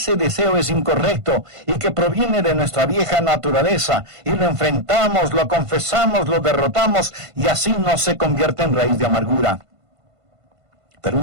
deseo es incorrecto y que proviene de nuestra vieja naturaleza, y lo enfrentamos, lo confesamos, lo derrotamos, y así no se convierte en raíz de amargura. Pero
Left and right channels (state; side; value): late; left; 1.5 ms